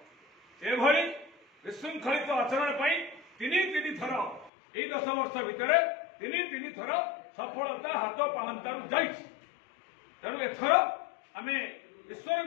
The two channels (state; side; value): drops out; right; at 4.5 s